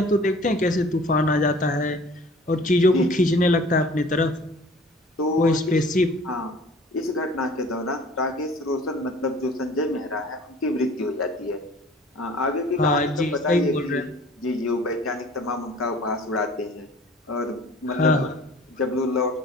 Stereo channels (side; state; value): both; normal; correlation 0.48